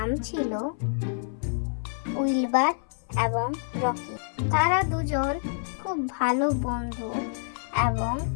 ছিল উইলবার এবং রকি। তারা দুজন খুব ভালো বন্ধু এবং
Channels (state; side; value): silent; right; 60 dB below the other